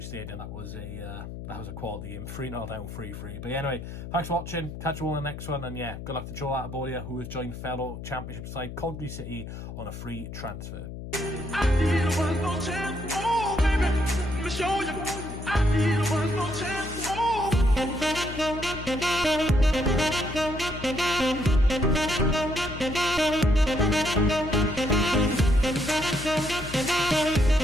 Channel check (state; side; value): noise; left; hum, 10 dB below the sound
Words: Stadium, that was a quality game. 3-0 down, 3-3. But anyway, thanks for watching. Catch you all in the next one. And yeah, good luck to Joe Latibeaudiere, who has joined fellow Championship side Coventry City on a free transfer. I need one more chance, oh baby, let me show you. I need one more chance, oh.